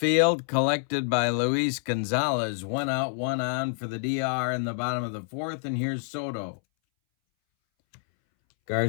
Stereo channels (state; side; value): silent; right; 60 dB below the other